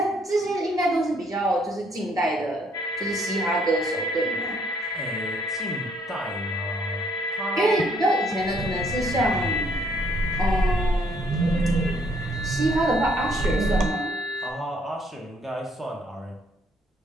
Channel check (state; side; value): normal; both; correlation 0.66